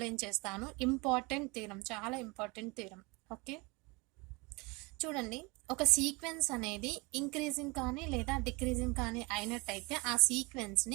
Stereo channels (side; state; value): left; quieter; 26.7 dB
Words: చేస్తాను. ఇంపార్టెంట్ థీరం, చాలా ఇంపార్టెంట్ థీరం. ఓకే, చూడండి, ఒక సీక్వెన్స్ అనేది ఇంక్రీజింగ్ కానీ లేదా డిక్రీజింగ్ కానీ అయినట్టయితే ఆ